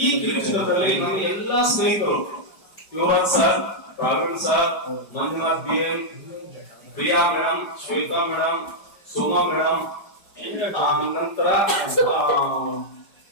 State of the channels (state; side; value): late; right; 5.1 ms